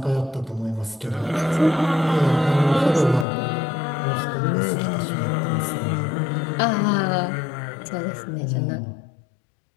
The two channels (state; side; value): drops out; right; at 3.2 s